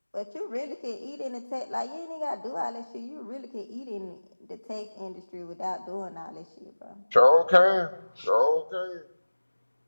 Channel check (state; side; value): inverted; both; correlation -1.00